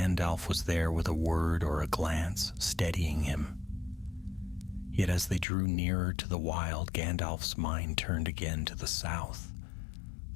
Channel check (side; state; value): right; drops out; at 5.5 s